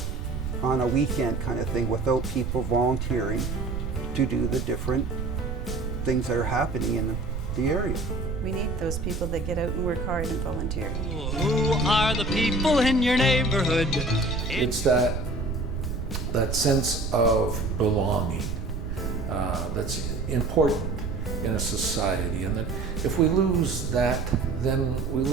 on a weekend kind of thing without people volunteering to do the different things that are happening in the area. We need those people that get out and work hard and volunteer. Who are the people in your neighborhood? It's that sense of belonging that's important in a society, and that if we lose that, then we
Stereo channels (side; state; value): right; noise; rumble, 4 dB below the sound